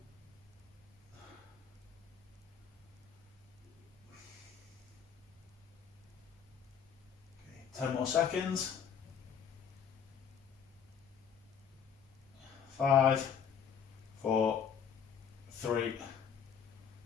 Okay, 10 more seconds. 5, 4, 3,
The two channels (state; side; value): quieter; right; 7.6 dB